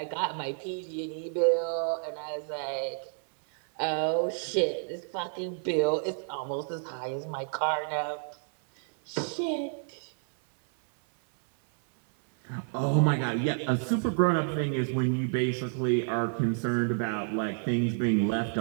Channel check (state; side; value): silent; left; 57 dB below the other